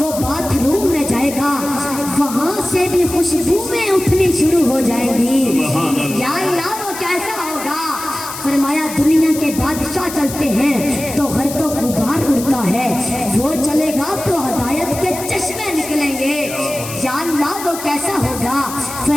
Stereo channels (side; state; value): left; noise; hiss, 10 dB below the sound